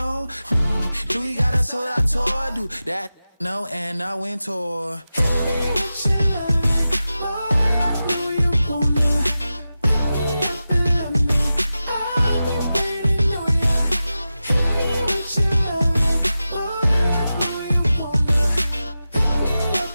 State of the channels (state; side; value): inverted; both; correlation -0.93